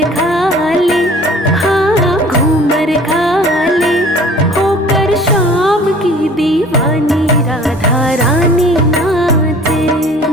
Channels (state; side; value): normal; both; correlation 0.49